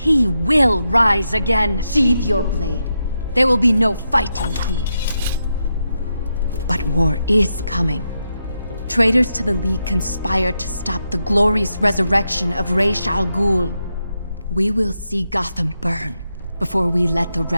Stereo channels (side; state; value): both; inverted; correlation -0.85